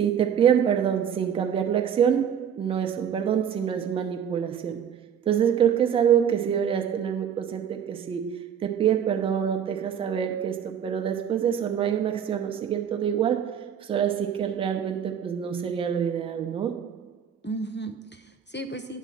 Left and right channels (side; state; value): left; quieter; 8.4 dB